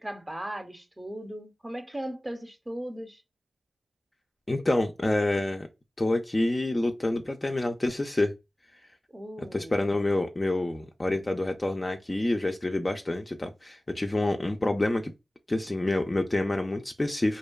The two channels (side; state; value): both; normal; correlation 0.98